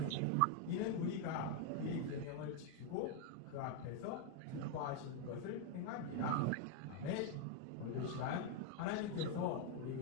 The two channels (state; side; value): different; both; correlation 0.00